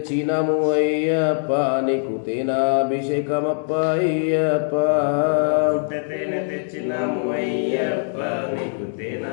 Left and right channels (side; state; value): right; silent; digital silence